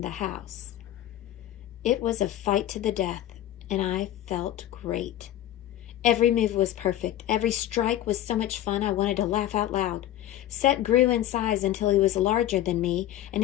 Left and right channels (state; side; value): quieter; right; 13.0 dB